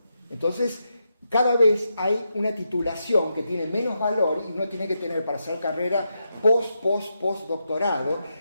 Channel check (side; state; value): both; inverted; correlation -0.84